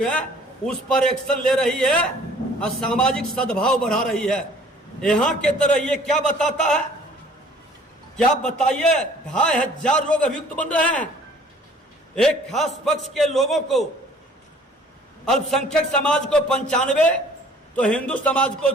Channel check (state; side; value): normal; both; correlation 0.54